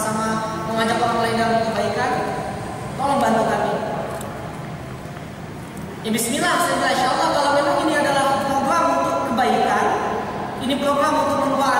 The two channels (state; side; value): identical; both; correlation 1.00